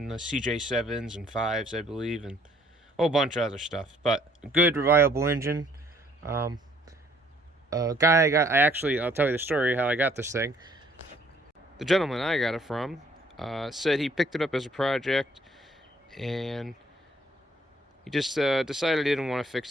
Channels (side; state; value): both; normal; correlation 0.62